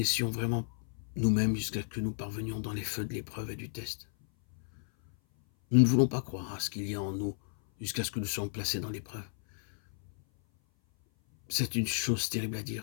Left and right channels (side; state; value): right; silent; 56 dB below the other